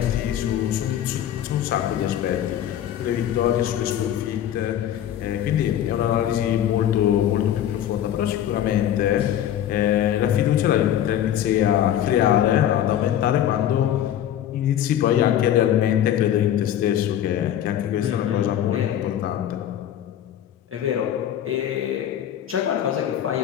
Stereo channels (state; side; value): quieter; right; 10.9 dB